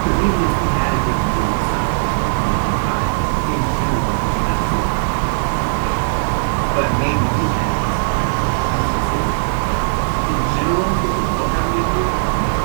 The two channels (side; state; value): left; silent; digital silence